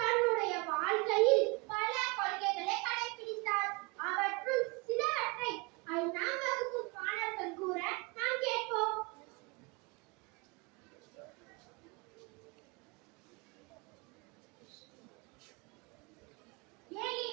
தன்னுடைய வாழ்க்கையில் பல கொள்கைகளை கடைபிடித்தார். அவற்றுள் சிலவற்றை 5ஆம் வகுப்பு மாணவர்கள் கூற நாம் கேட்போம்.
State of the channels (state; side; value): quieter; left; 28.4 dB